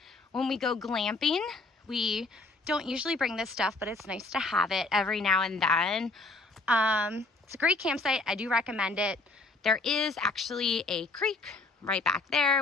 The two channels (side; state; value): right; quieter; 3.4 dB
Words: when we go glamping. We don't usually bring this stuff, but it's nice to have it every now and then. It's a great campsite. I do recommend it. There is actually a creek right back